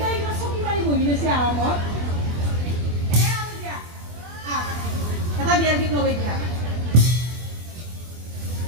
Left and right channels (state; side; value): late; left; 24 ms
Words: কিবা চকী মাৰি বহি লৈছে আৰামত এ আৰু দিয়া এটা বিয়াৰ গীত লগাই দিয়া